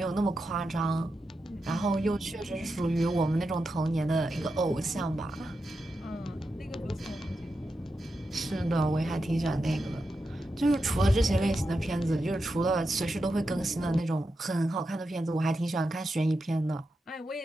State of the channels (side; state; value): both; normal; correlation 0.88